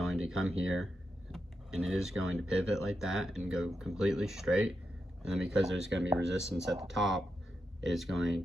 to come here, and it is going to pivot like that and go completely straight. And then because there's going to be resistance at the top, it is going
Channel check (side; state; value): both; normal; correlation 0.86